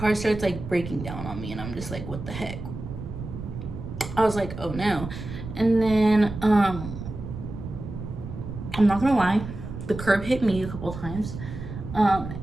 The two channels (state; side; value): noise; right; rumble, 9 dB below the sound